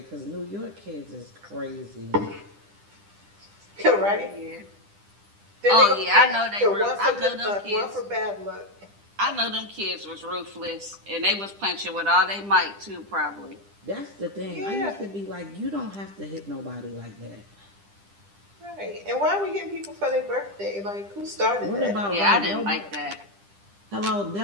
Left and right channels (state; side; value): late; left; 10 ms